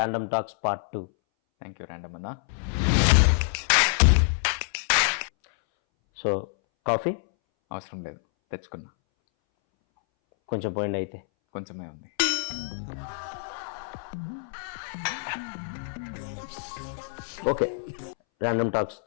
talks part 2. Thank you random అన్న. సో కాఫీ అవసరం లేదు, తెచ్చుకున్నా. కొంచెం పోయింది అయితే. కొంచెమే ఉంది. ఓకే, ర్యాండమ్ టాక్స్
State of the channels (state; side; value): silent; right; 60 dB below the other